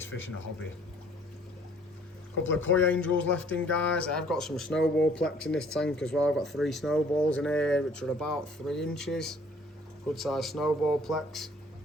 fish in the hobby. A couple of koi angels left in, guys. I've got some snowball plex in this tank as well. I've got 3 snowballs in here, which are about 3 inches. Good size snowball plex.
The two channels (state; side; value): normal; both; correlation 0.57